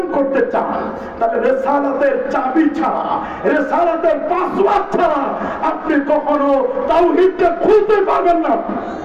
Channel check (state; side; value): identical; both; correlation 1.00